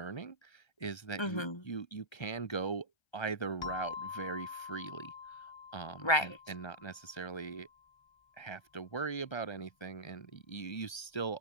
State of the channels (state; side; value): late; right; 1.3 ms